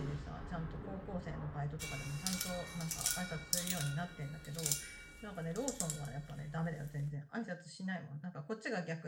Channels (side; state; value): both; identical; correlation 1.00